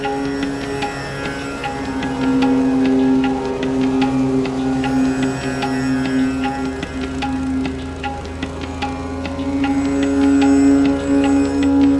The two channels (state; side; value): identical; both; correlation 1.00